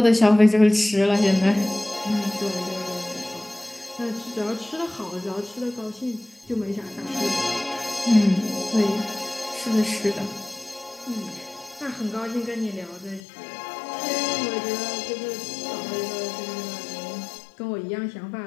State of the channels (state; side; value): drops out; right; at 13.2 s